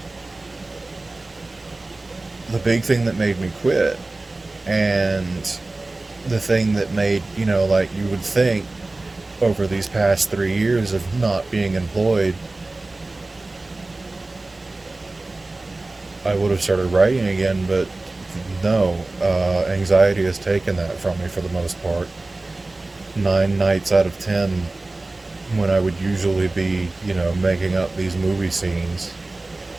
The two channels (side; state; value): left; quieter; 3.0 dB